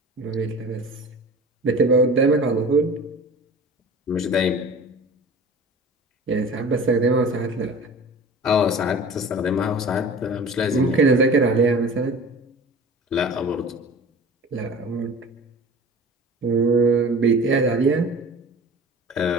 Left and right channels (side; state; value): both; normal; correlation 0.39